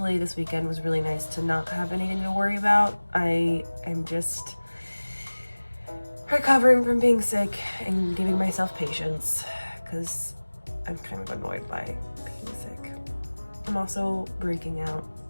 this weekend was really nice to not have anything to worry about. I am just recovering from being sick and giving myself patience, because I'm kind of annoyed by being sick. I'm also breaking out.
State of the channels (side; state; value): both; inverted; correlation -1.00